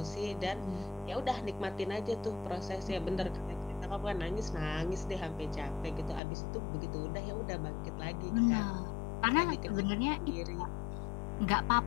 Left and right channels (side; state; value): right; drops out; at 6.2 s